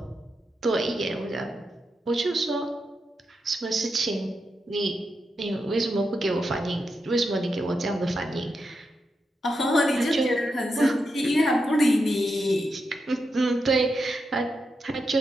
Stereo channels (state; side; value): normal; both; correlation 0.86